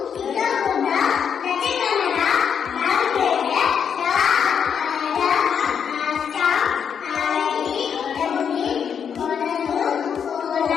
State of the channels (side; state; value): right; quieter; 7.5 dB